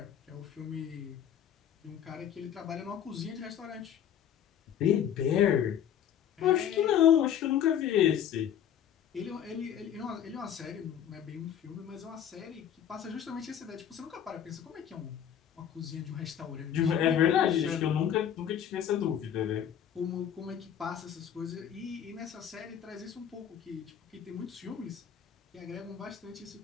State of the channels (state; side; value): quieter; right; 9.4 dB